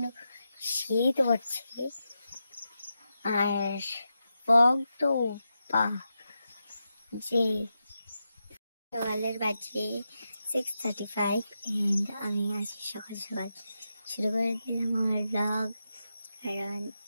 শীত হচ্ছে আর ফগ তো যে সকালের বাজে 6:35 and আমি আজ সকাল সকাল শুরু করে দিলাম আমার ব্লগ কারণ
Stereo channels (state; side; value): inverted; both; correlation -0.88